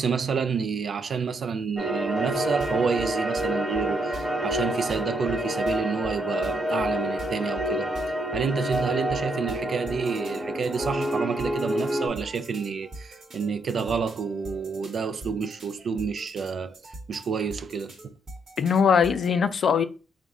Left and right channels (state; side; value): normal; both; correlation 0.74